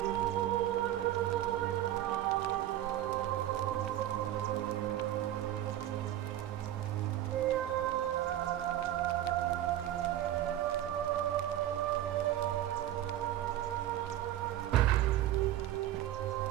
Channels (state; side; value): quieter; left; 12.9 dB